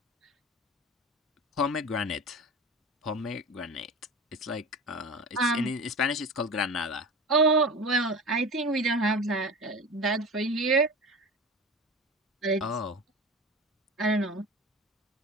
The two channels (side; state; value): both; normal; correlation 0.31